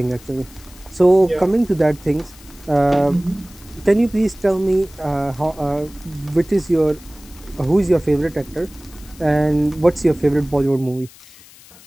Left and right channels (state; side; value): noise; left; hiss, 23 dB below the sound